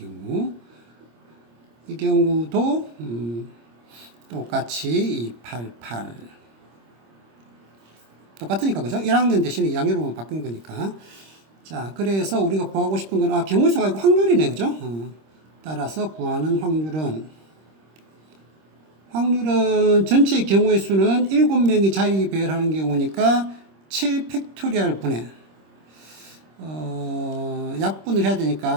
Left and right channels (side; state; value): left; late; 26 ms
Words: 이 경우도 똑같이 2, 8, 8. 똑같으니까, 그죠? 1학년 대신에 2학년으로만 바뀐 거니까. 자, 그래서 우리가 구하고 싶은 건, 경우의 수가 아니고 확률이네, 그죠? 따라서 구하는 확률은 전체의 경우의 수는 7명이 자리 배열하는 경우니까 7 팩토리얼 분의, 약분을 해야